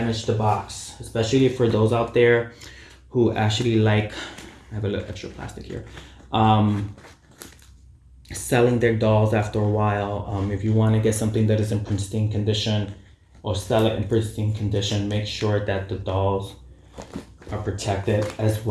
the box, especially for those out there who actually like, I have a little extra plastic here, selling their dolls after a while. If you want to get something that is in pristine condition or sell it in pristine condition, make sure that the dolls are protected as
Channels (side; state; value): both; identical; correlation 1.00